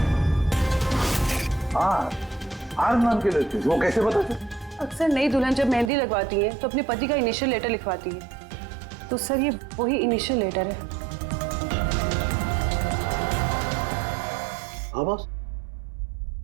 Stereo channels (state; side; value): drops out; left; at 5.9 s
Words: आर नाम के लड़के? वो कैसे पता चला? अक्सर नई दुल्हन जब मेहंदी लगवाती है तो अपने पति का इनिशियल लेटर लिखवाती है, तो सर ये वही इनिशियल लेटर है। हाँ बॉस,